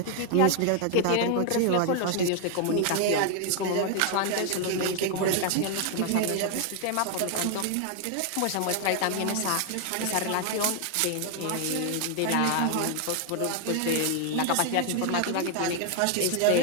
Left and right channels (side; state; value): both; different; correlation 0.00